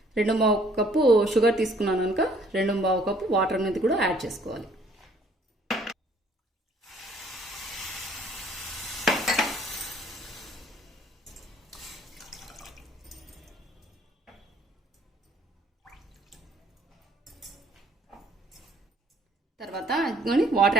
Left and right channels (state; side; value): normal; both; correlation 0.60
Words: 2 కప్పు షుగర్ తీసుకున్నాను కనుక 2 కప్పు వాటర్ అనేది కూడా యాడ్ చేసుకోవాలి. తర్వాత వాటర్